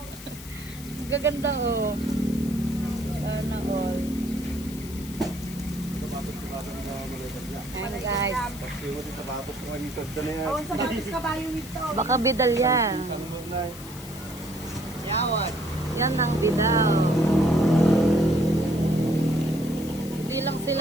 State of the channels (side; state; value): left; noise; hiss, 15 dB below the sound